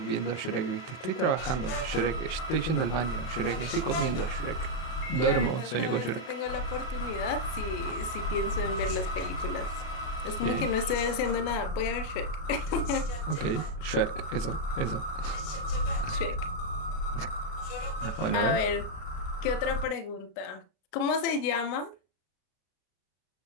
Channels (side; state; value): right; late; 33 ms